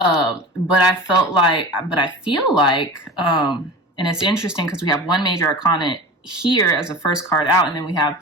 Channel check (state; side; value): normal; both; correlation 0.34